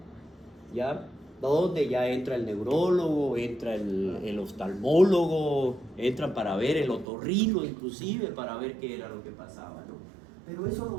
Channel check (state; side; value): drops out; left; at 7.1 s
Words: ¿ya? Donde ya entra el neurólogo, entra el oftalmólogo, entran para ver el otorrino inclusive, para ver qué era lo que pasaba, ¿no? Pero eso lo